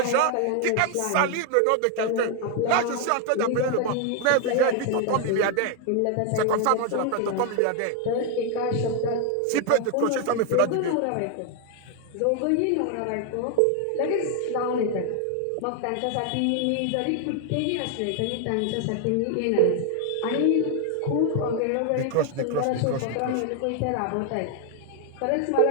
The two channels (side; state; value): both; different; correlation 0.01